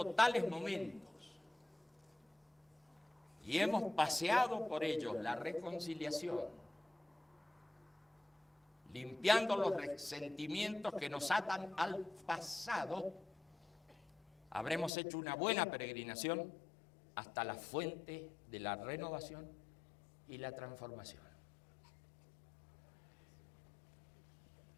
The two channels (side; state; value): right; drops out; at 14.9 s